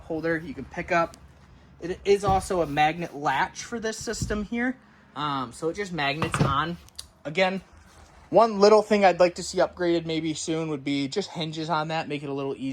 holder you can pick up. It is also a magnet latch for this system here. So it just magnets on. Again, one little thing I'd like to see upgraded maybe soon would be just hinges on that. Make it a little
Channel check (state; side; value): identical; both; correlation 1.00